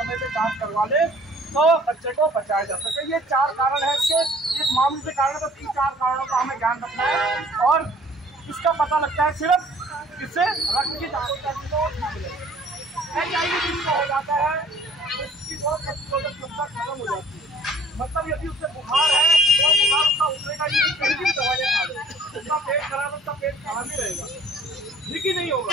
से जांच करवा ले तो बच्चे को बचाया जा सके। ये 4 कारण है इसके, इस मामले से कारण बस इन 4 कारणों का हमें ध्यान रखना है और इसका पता लगता है सिर्फ इससे रक्त की जांच करने को HIV जिसको हो जाता है उसकी रोग प्रतिरोधक क्षमता खत्म हो जाती है। मतलब यदि उससे बुखार है तो बुखार उसका उतरेगा ही नहीं, कहीं भी दवाइयाँ खा ले, उसका पेट खराब, उसका पेट खराब ही रहेगा, ठीक ही नहीं होगा।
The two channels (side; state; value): both; normal; correlation 0.55